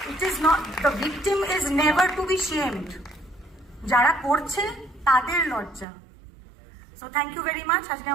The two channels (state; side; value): drops out; left; at 5.9 s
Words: It is not, the victim is never to be shamed. যারা করছে তাদের লজ্জা। So thank you very much. আজকে